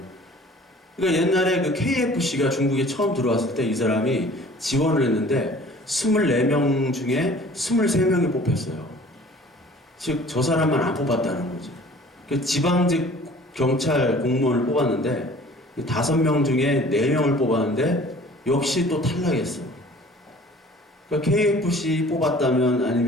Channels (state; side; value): normal; both; correlation 0.49